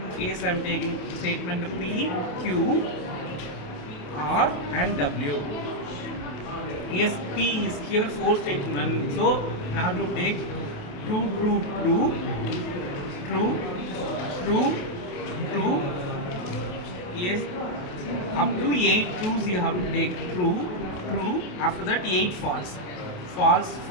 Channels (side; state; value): right; late; 28 ms